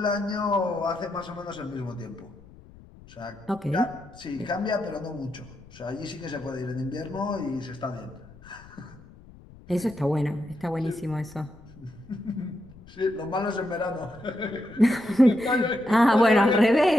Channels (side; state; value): left; noise; rumble, 22 dB below the sound